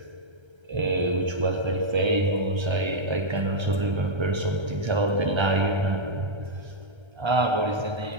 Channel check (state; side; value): late; left; 1.3 ms